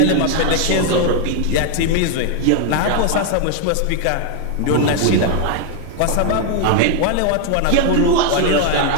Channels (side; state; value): both; different; correlation 0.00